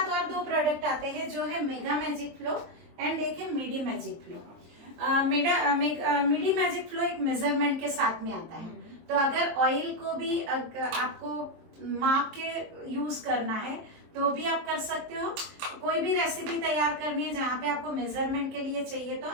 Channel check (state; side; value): late; left; 23 ms